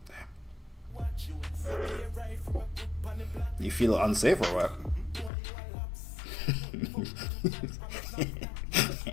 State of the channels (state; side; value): drops out; right; at 5.3 s